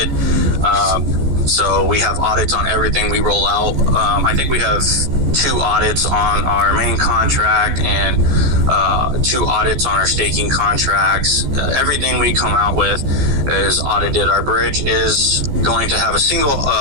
So we have audits on everything we roll out. I think we have 2 audits on our main contract and 2 audits on our staking contracts. Everything we come out with is audited. Our bridge is going to have a single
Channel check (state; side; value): late; left; 15 ms